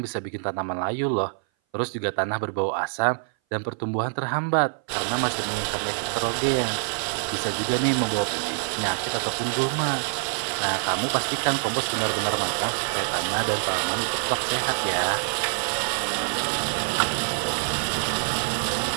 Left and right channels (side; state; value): left; silent; 58 dB below the other